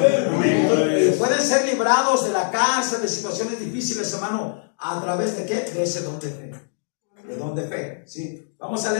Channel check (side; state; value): right; silent; digital silence